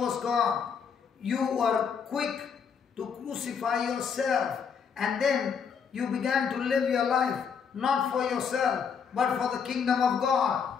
gone. You were quick to crucify yourself, and then you began to live your life not for yourself but for the kingdom of God.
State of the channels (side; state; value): right; quieter; 6.6 dB